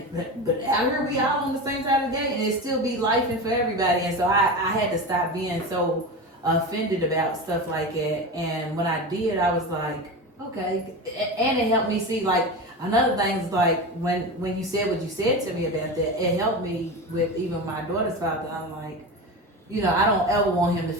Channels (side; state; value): both; normal; correlation 0.25